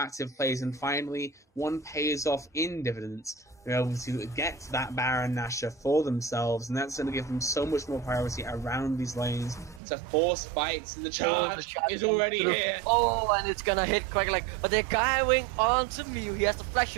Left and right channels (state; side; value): drops out; left; at 9.8 s